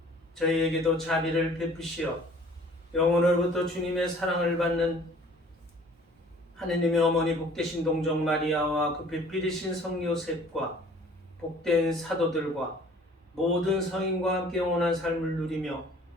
저희에게도 자비를 베푸시어 영혼으로부터 주님의 사랑을 받는 하느님의 어머니 복되신 동정 마리아와 그 배필이신 성 요셉과 복된 사도들과 모든 성인과 함께 영원한 삶을 누리며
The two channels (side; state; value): both; normal; correlation 0.52